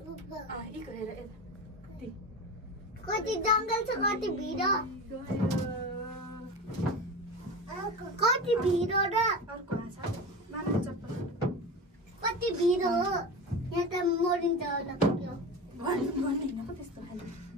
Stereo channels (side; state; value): both; normal; correlation 0.27